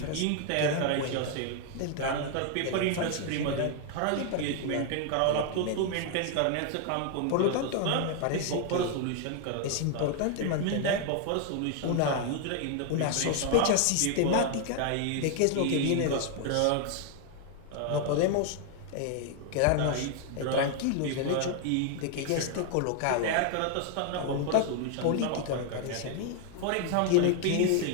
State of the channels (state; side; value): different; both; correlation 0.00